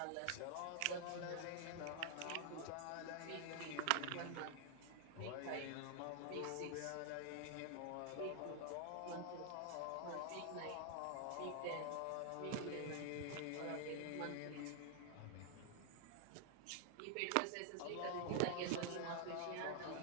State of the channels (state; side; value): different; both; correlation 0.00